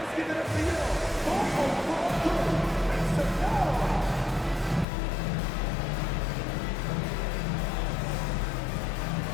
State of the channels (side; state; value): right; drops out; at 4.9 s